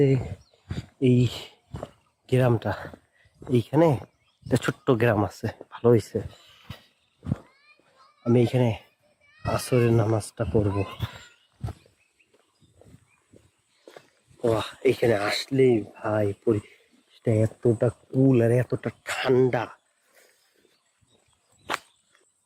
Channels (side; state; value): both; identical; correlation 1.00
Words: এই গ্রামটা, এইখানে একটা ছোট্ট গ্রাম আছে, ভালো হয়েছে। আমি এইখানে আসরের নামাজটা পড়বো। এখানে আসলেই ভাই পরিবেশটা এতটা কুল আর এতটা ঠান্ডা।